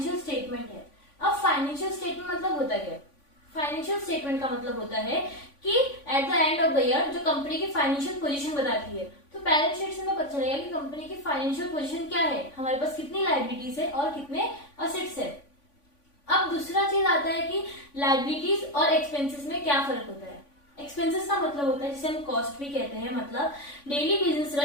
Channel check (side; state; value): right; late; 3.5 ms